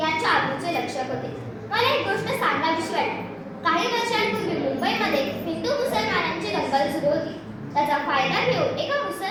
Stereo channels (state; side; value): identical; both; correlation 1.00